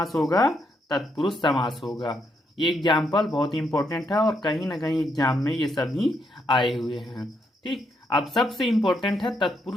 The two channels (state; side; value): normal; both; correlation 0.77